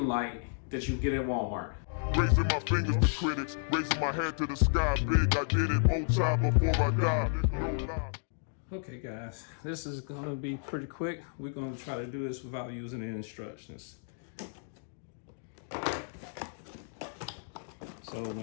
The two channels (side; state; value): right; silent; digital silence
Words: light that you get at Walmart. Raising my fingers to critics, raising my head to the sky big. I did it more time before I died. Okay guys, this is going to be pretty quick. We're going to try to do this without using the instructions. So